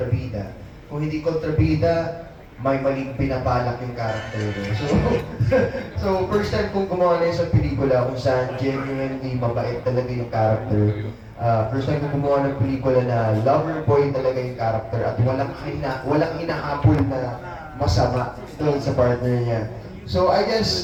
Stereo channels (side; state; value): both; identical; correlation 1.00